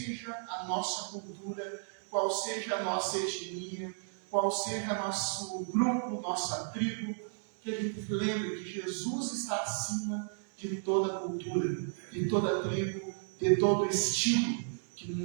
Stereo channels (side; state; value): left; silent; digital silence